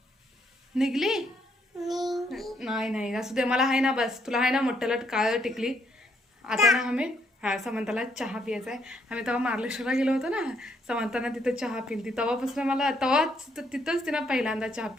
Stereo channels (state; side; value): normal; both; correlation 0.72